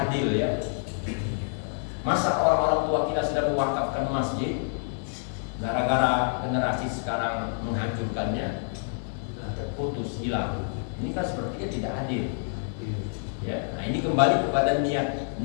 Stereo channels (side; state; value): right; silent; digital silence